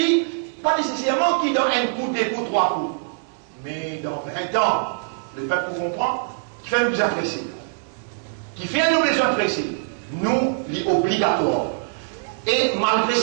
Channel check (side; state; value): left; silent; digital silence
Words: pas nécessairement qu'il donne un coup, 2 coups, 3 coups. Mais dans 20 ans, le peuple vous comprend, qui fait nous apprécier. Qui fait nos besoins précis, nous, les obligatoires. Et malgré